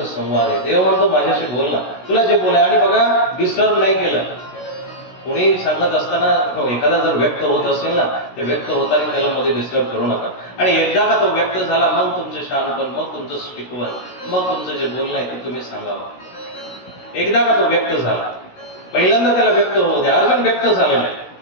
संवाद आहे. देव म्हणतो माझ्याशी बोल ना, तुला जे बोलाय. आणि बघा, डिस्टर्ब नाही केलं. कोणी सांगत असताना एखादा जर व्यक्त होत असेल ना, ते व्यक्त होताना त्याला मध्ये डिस्टर्ब करू नका. आणि एकदा का तो व्यक्त झाला, मग तुमचे शहाणपण, मग तुमचं स्टिकवन, मग तुमचं जे बोलणं आहे ते तुम्ही सांगावं. एकदा का तो व्यक्त झाला, पहिल्यांदा त्याला व्यक्त होऊ द्या. अर्जुन व्यक्त झालेला आहे.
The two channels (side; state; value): right; late; 16 ms